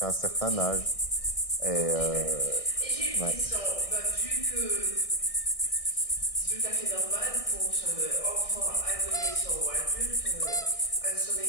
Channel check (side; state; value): right; late; 1.6 ms